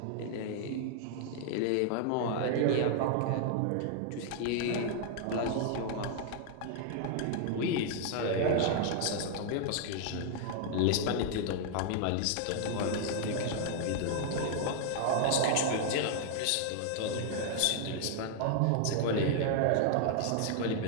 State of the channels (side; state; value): both; different; correlation 0.00